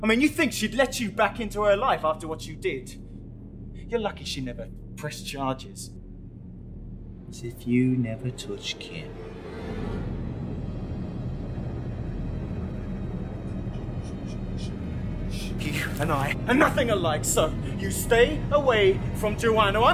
I mean, you think she'd let you back into her life after what you did? You're lucky she never pressed charges. As if you never touched Kim. You and I are nothing alike, so you stay away from Joanne or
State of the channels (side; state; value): both; identical; correlation 1.00